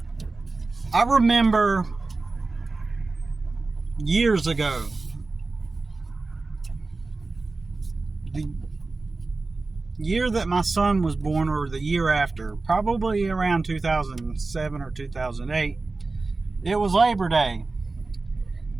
I remember years ago, the year that my son was born, or the year after, probably around 2007 or 2008, it was Labor Day.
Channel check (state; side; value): quieter; left; 3.6 dB